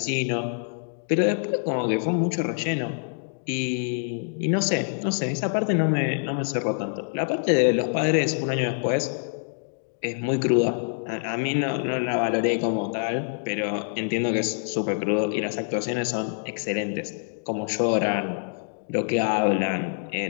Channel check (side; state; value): right; silent; digital silence